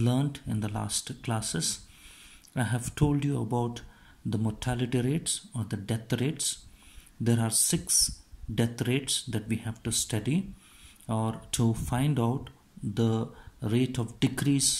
in the last classes. I have told you about the mortality rates or the death rates. There are 6 death rates that we have to study or to find out the rate of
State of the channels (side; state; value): both; identical; correlation 1.00